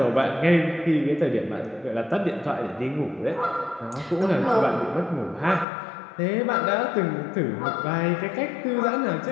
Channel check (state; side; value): drops out; right; at 5.7 s